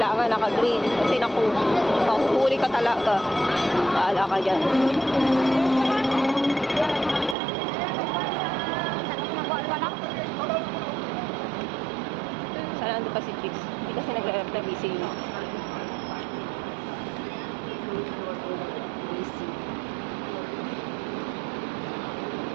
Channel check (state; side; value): drops out; left; at 7.4 s